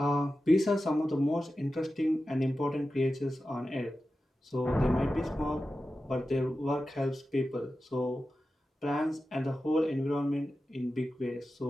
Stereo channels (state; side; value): normal; both; correlation 0.93